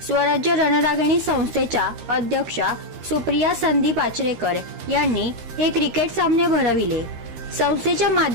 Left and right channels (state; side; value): late; left; 13 ms